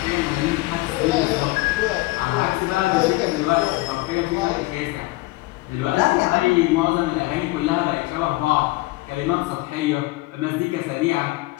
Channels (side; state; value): right; quieter; 21.0 dB